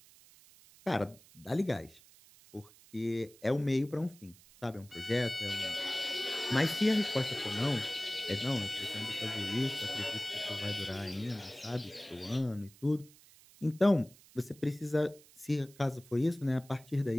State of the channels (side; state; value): right; noise; hiss, 24 dB below the sound